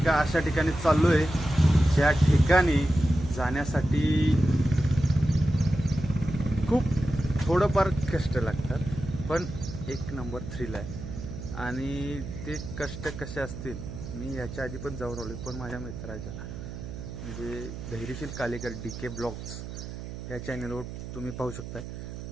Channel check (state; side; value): noise; right; hum, 9 dB below the sound